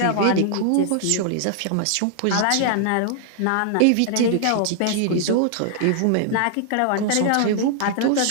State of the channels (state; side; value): different; both; correlation 0.00